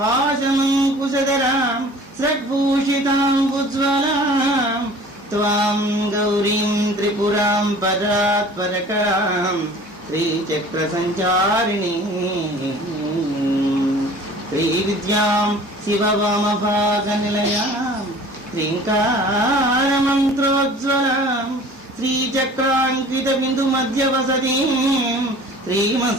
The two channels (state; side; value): normal; both; correlation 0.46